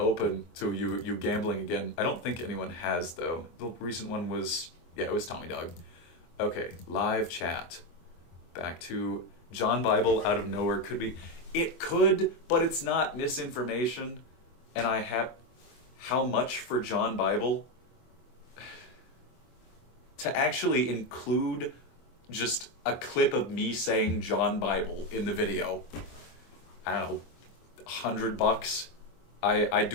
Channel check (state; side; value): late; right; 24 ms